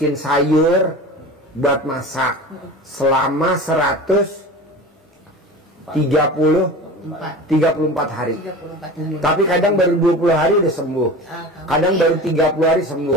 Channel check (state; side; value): normal; both; correlation 0.34